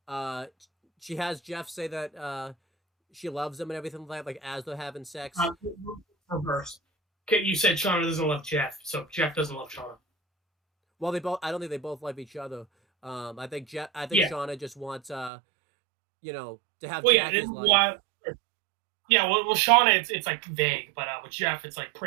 uh, she has Jeff say that she loves him and everything like that, like as they're having sex. Uh, Reverse. Okay, you said Shauna doesn't love Jeff, so Jeff doesn't love Shauna. Well, they both. I don't think they both love each other. I think I think Yeah. Shauna just wants to have Well, yeah. Jackie's life. Well, yeah. Well, Shauna, it's like vague, but with Jeff, it's like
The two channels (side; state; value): left; drops out; at 15.3 s